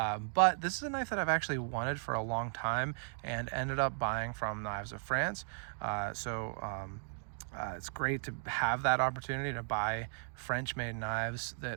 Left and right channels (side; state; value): left; silent; digital silence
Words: this is a knife that I've actually wanted for a long time and ended up buying from Knives of France. It's great to have that opportunity to buy French-made knives